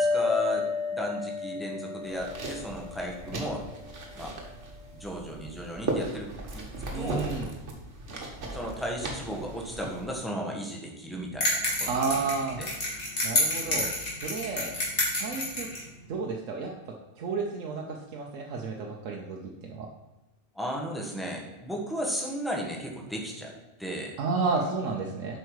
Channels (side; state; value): both; normal; correlation 0.23